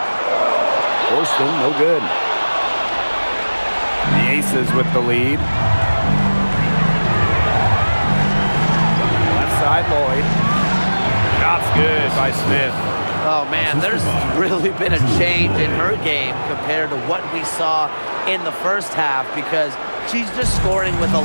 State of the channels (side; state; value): both; inverted; correlation -1.00